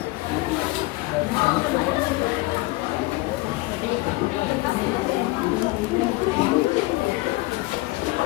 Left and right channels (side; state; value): right; quieter; 21.0 dB